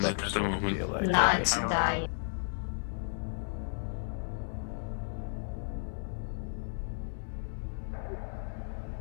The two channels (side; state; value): right; silent; digital silence